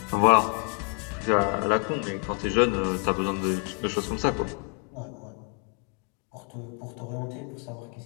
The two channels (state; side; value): quieter; right; 36.4 dB